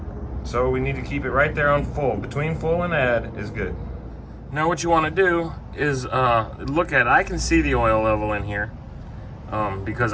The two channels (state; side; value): identical; both; correlation 1.00